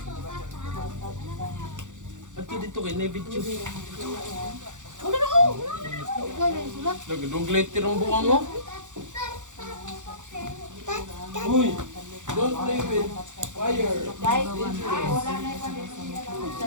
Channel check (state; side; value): late; left; 0.86 ms